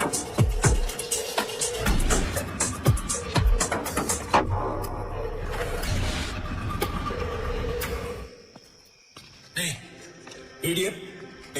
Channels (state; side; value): identical; both; correlation 1.00